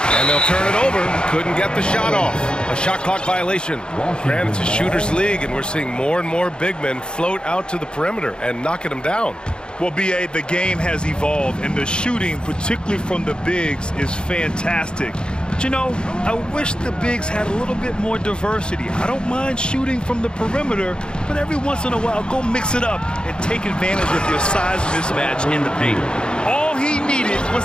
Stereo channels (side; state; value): right; late; 0.050 ms